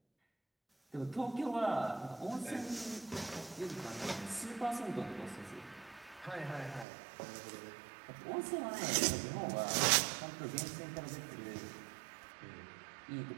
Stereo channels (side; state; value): left; drops out; at 6.9 s